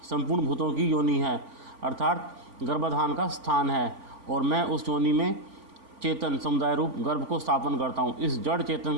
संपूर्ण भूतों की योनि है, अर्थात गर्भाधान का स्थान है, और मैं उस योनि में चेतन समुदाय रूप गर्भ को स्थापन करता हूँ। इस जड़ चेतन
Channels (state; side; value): late; left; 3.5 ms